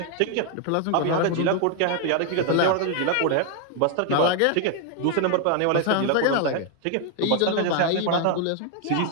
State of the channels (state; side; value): different; both; correlation 0.00